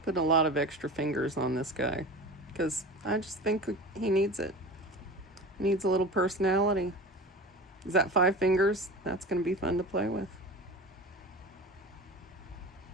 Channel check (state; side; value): normal; both; correlation 0.34